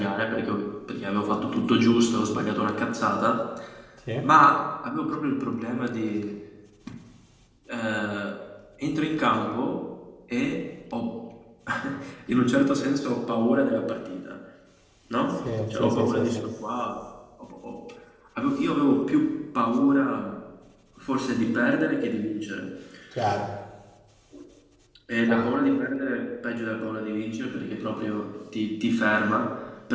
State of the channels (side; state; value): both; identical; correlation 1.00